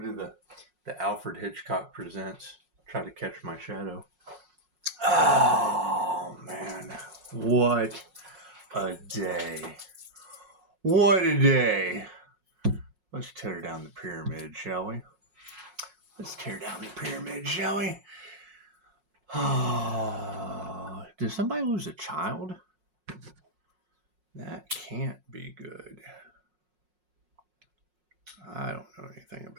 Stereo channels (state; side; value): late; left; 5.5 ms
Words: did the Alfred Hitchcock Presents? Try to Catch My Shadow. Oh, man. What a day. What a day. Let's tear down the pyramid, shall we? Let's tear down the pyramid, shall we? Oh, did somebody lose a child? That can't be good. I don't know anything